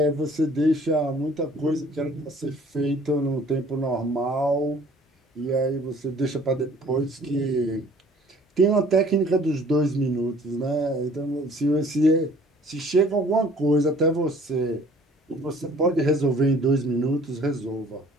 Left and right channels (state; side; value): normal; both; correlation 0.54